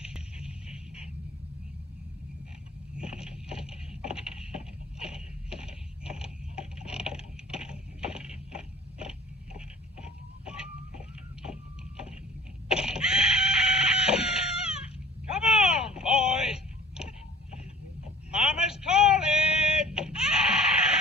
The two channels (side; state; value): both; normal; correlation 0.46